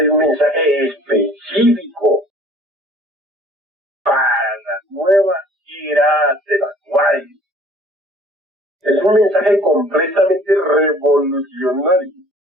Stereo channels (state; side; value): normal; both; correlation 0.52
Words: un mensaje específico para la nueva era del Acuario. Es un mensaje completamente revolucionario,